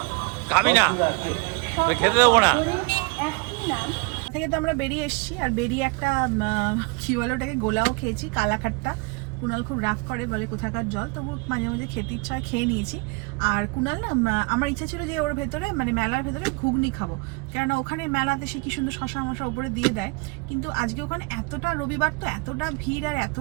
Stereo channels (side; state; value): left; quieter; 28.7 dB